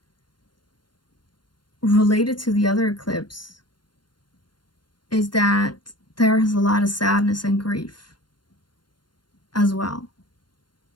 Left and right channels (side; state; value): right; late; 0.71 ms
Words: related to the other eclipse, is that there is a lot of sadness and grief as well.